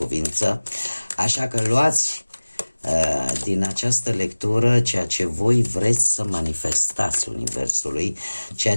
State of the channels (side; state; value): both; inverted; correlation -1.00